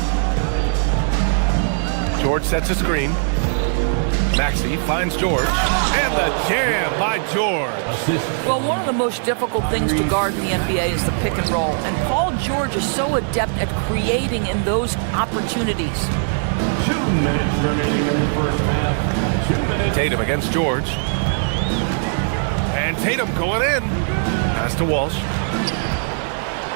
George sets a screen. Maxey finds George. And the jam by George. Well, one of the most difficult things to guard in the NBA is the pick and roll. And Paul George is so adept at creating in those opportunities. 2 minutes remaining in the first half. 2 minutes. Tatum against George. And Tatum going in. Pass to Walsh.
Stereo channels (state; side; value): silent; left; 65 dB below the other